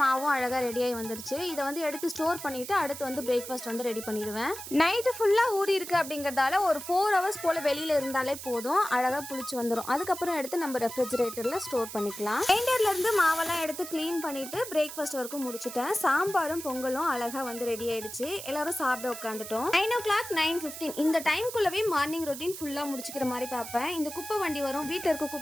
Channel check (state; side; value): noise; right; hiss, 10 dB below the sound